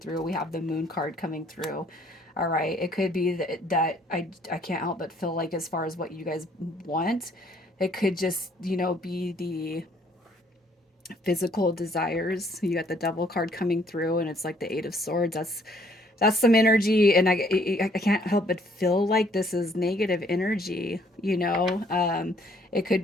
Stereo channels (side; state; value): both; normal; correlation 0.63